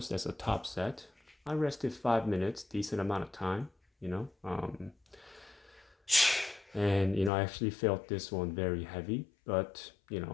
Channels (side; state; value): right; drops out; at 7.3 s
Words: That's a top set. I rested 5 minutes, decent amount of time, and I actually felt this one very heavy, but